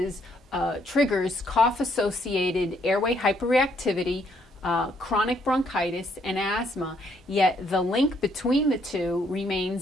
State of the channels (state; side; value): normal; both; correlation 0.70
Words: triggers cough-associated airway hyperreactivity, chronic bronchitis, and asthma, yet the link between the two